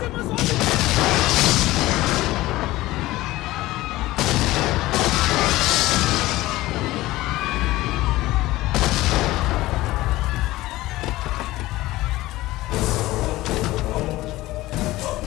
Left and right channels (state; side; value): quieter; right; 17.8 dB